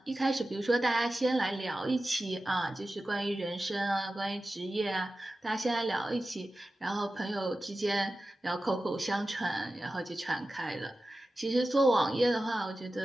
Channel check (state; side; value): normal; both; correlation 0.94